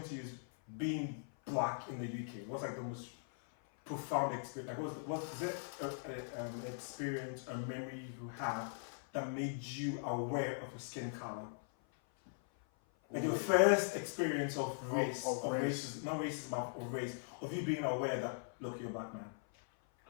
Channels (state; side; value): silent; right; 51 dB below the other